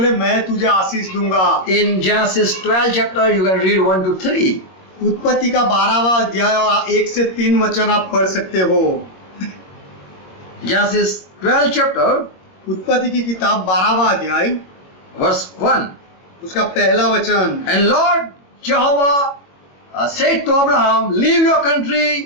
मैं तुझे आशीष दूंगा। In Genesis 12 chapter, you can read 1 to 3. उत्पत्ति का 12वां अध्याय और 1 से 3 वचन आप पढ़ सकते हो। Genesis 12 chapter, उत्पत्ति की किताब 12वां अध्याय verse 1. उसका पहला वचन। And Lord Jehovah said to Abraham, leave your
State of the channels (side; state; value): right; late; 21 ms